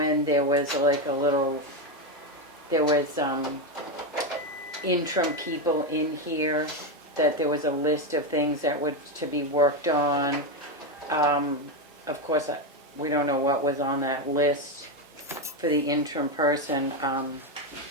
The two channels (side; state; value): both; normal; correlation 0.10